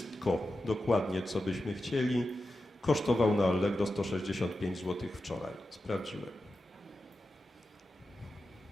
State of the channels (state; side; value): normal; both; correlation 0.91